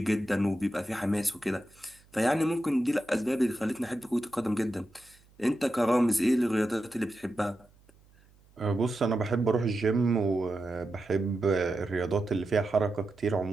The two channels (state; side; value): noise; right; hum, 29 dB below the sound